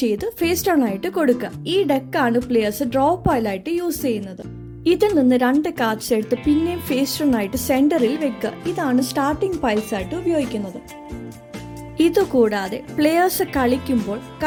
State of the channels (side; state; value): both; identical; correlation 1.00